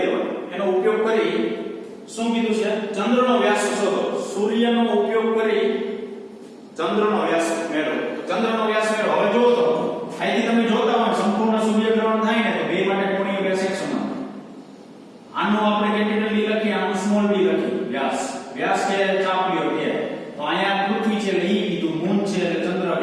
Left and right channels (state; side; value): identical; both; correlation 1.00